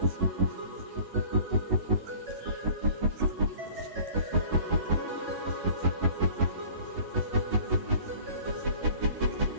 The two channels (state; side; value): late; left; 11 ms